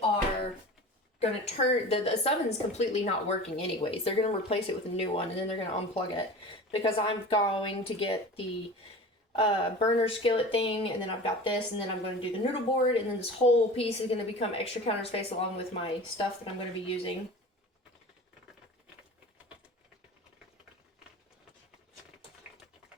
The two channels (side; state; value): both; normal; correlation 0.36